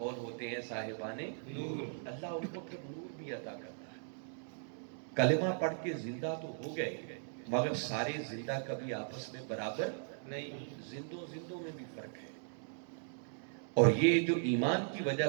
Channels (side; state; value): left; silent; digital silence